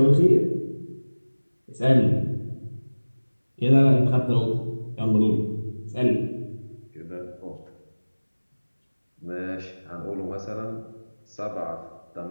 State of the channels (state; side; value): inverted; both; correlation -1.00